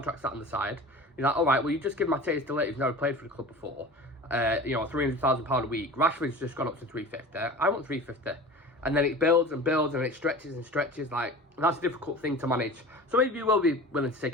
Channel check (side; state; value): both; normal; correlation 0.37